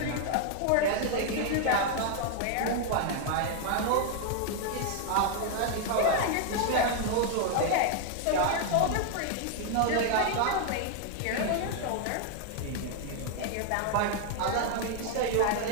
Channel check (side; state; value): both; different; correlation 0.00